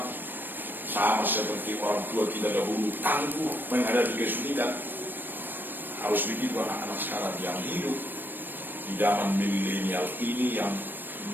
sama seperti orang tua kita dahulu tangguh menghadapi kesulitan. Harus begitu anak-anak sekarang yang hidup di zaman milenial ini, yang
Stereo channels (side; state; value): left; late; 0.093 ms